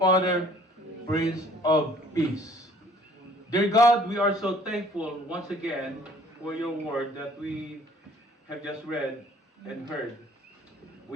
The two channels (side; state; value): both; normal; correlation 0.56